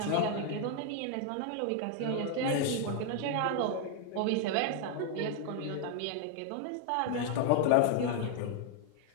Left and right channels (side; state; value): both; different; correlation 0.00